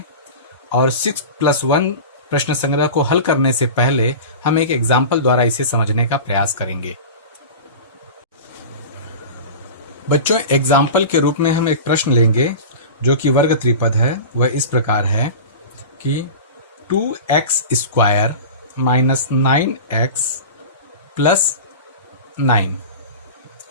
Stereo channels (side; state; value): both; inverted; correlation -0.32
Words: और 6+1 प्रश्न संग्रह को हल करने से पहले हम एक एग्जाम्पल द्वारा इसे समझने का प्रयास करेंगे। बच्चों, एग्जाम्पल के रूप में हम एक प्रश्न लेंगे जो कि वर्ग त्रिपद है। वह इस प्रकार है कि 2x square minus 9x plus 9।